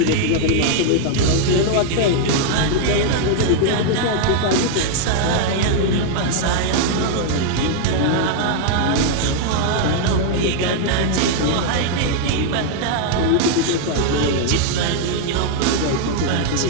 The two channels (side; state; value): both; different; correlation 0.00